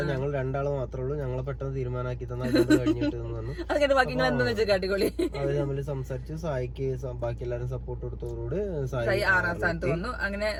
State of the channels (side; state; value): both; identical; correlation 1.00